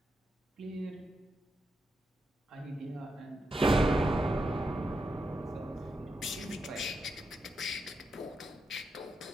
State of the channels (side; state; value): both; normal; correlation 0.85